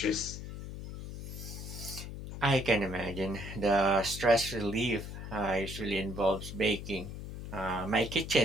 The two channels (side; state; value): left; noise; hum, 9 dB below the sound